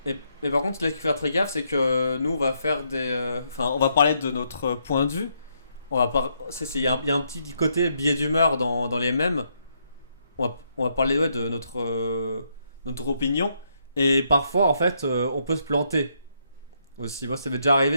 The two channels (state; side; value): inverted; both; correlation -0.76